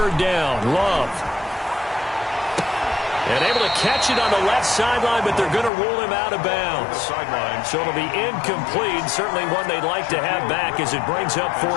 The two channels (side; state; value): right; drops out; at 5.7 s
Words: down, Love. And able to catch it on the left sideline, but they're going to rule him out of bounds. So it'll be incomplete. Certainly one they'd like to have back as it brings up